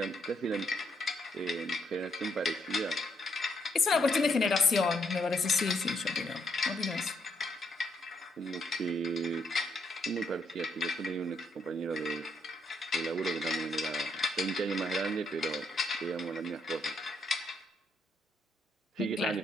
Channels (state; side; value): normal; both; correlation 0.75